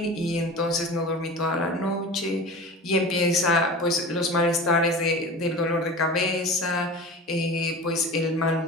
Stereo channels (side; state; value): both; normal; correlation 0.33